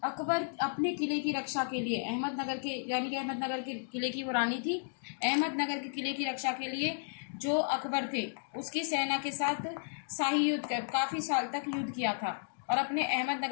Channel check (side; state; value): right; silent; digital silence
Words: अकबर अपने किले की रक्षा के लिए अहमदनगर के, यानी कि अहमदनगर के किले की वो रानी थी, अहमदनगर के किले की रक्षा के लिए जो अकबर थे उसकी सेना के साथ शाही युद्ध कर काफ़ी साल तक युद्ध किया था और अपने